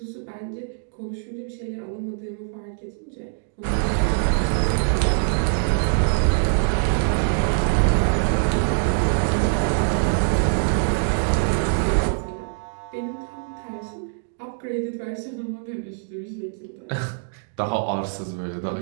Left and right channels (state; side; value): silent; left; digital silence